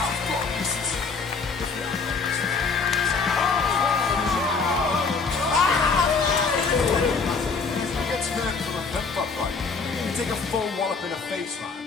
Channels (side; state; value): right; quieter; 4.7 dB